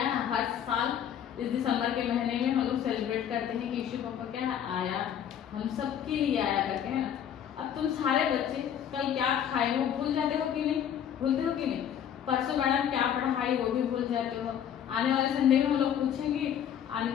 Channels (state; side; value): quieter; right; 9.4 dB